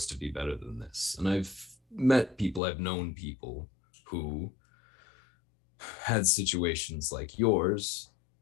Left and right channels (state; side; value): drops out; right; at 2.6 s